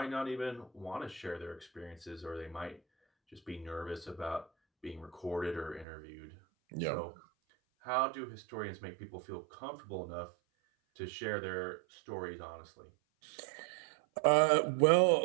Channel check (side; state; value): left; drops out; at 5.9 s